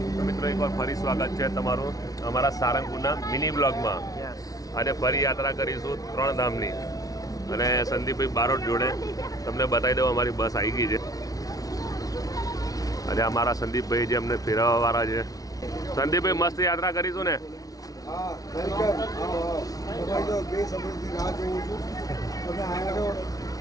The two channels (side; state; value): right; late; 0.18 ms